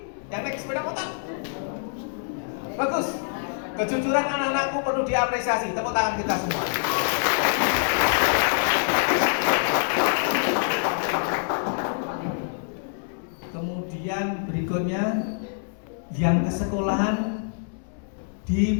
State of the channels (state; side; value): silent; right; 61 dB below the other